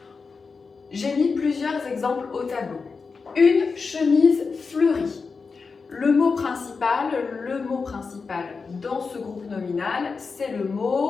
j'ai mis plusieurs exemples au tableau. Une chemise fleurie. Le mot principal dans ce groupe nominal, c'est le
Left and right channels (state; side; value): quieter; right; 4.8 dB